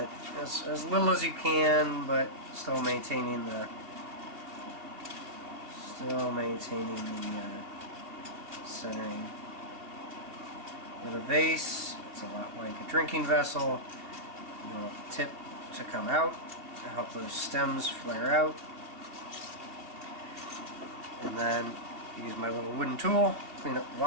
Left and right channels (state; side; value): late; left; 2.7 ms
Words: as little as you can, but still maintaining the centering. With a vase, it's a lot like a drinking vessel. You want the tip to come out to help those stems flare out. And then use my little wooden tool, clean up the